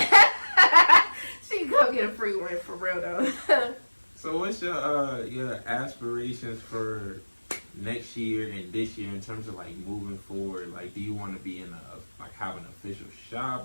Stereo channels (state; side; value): inverted; both; correlation -1.00